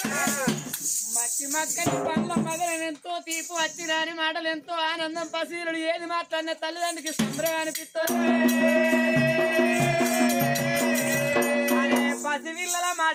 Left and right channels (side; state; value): both; identical; correlation 1.00